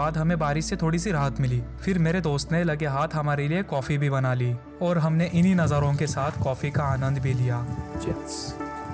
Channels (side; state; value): both; identical; correlation 1.00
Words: हमें बारिश से थोड़ी सी राहत मिली। फिर मेरे दोस्त ने लगे हाथ हमारे लिए कॉफ़ी भी बना ली और हमने इन्हीं नज़ारों के साथ कॉफ़ी का आनंद भी लिया।